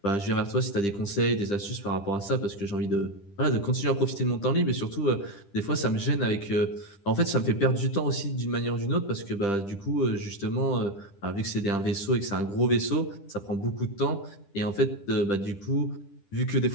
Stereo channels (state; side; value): late; right; 10 ms